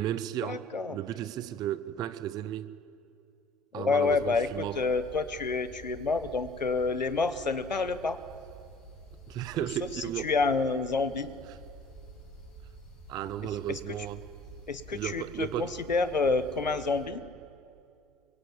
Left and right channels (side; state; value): both; normal; correlation 0.51